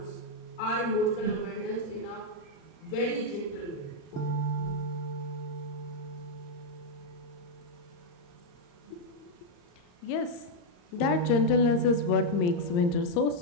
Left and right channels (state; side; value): late; right; 35 ms